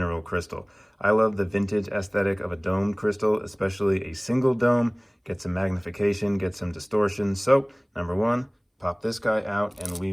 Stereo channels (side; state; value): both; identical; correlation 1.00